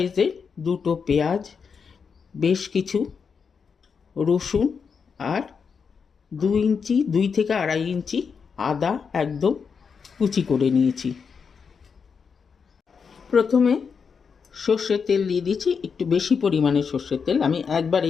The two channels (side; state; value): right; quieter; 6.0 dB